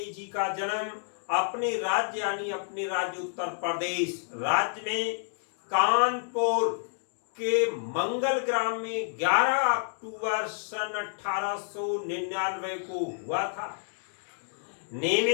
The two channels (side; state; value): right; silent; digital silence